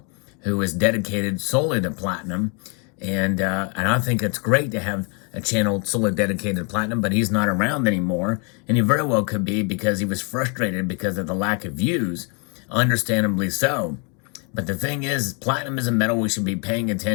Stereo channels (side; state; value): right; quieter; 35.4 dB